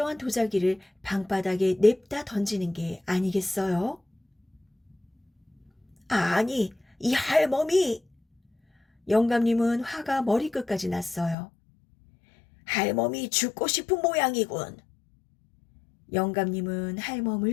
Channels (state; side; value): drops out; right; at 11.4 s